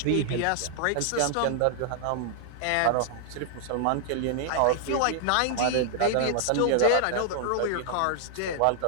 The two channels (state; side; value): different; both; correlation -0.01